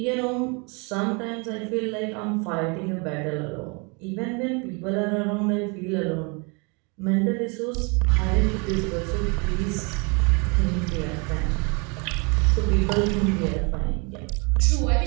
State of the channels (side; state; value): left; quieter; 31.6 dB